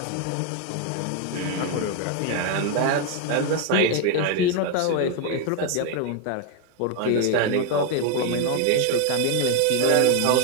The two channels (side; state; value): both; different; correlation 0.01